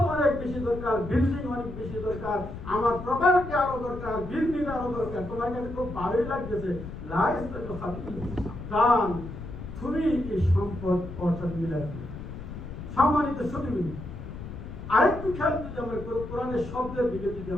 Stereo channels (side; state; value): left; noise; rumble, 10 dB below the sound